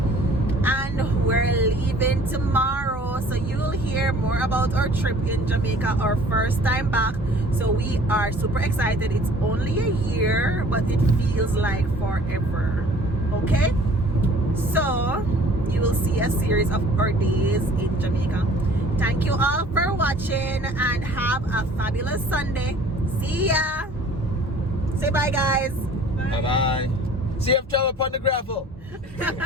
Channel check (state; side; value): normal; both; correlation 0.51